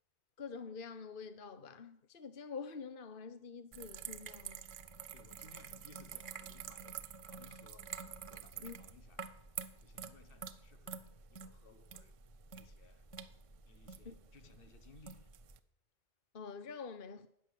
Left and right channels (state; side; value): late; right; 1.6 ms